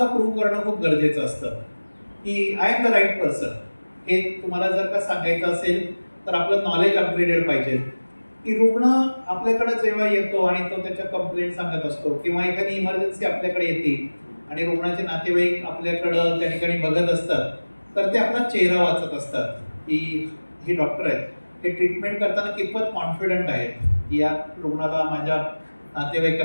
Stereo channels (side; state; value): both; inverted; correlation -1.00